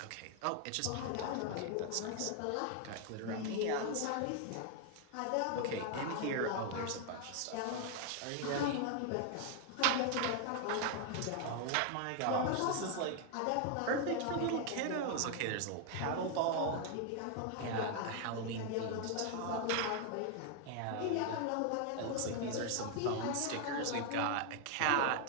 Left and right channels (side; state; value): both; different; correlation 0.00